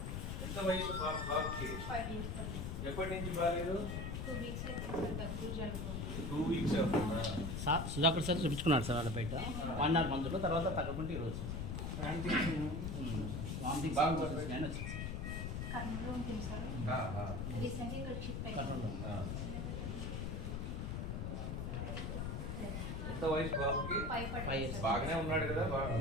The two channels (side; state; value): left; noise; rumble, 3 dB below the sound